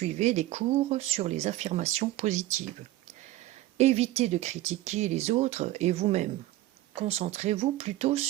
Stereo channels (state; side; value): quieter; left; 16.1 dB